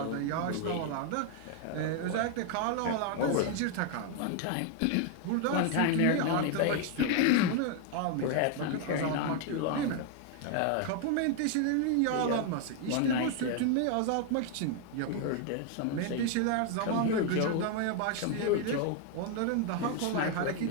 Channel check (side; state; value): both; different; correlation 0.00